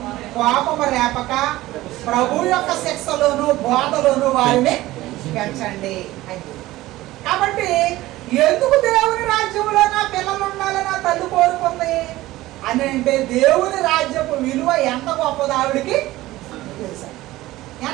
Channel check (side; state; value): left; quieter; 17.1 dB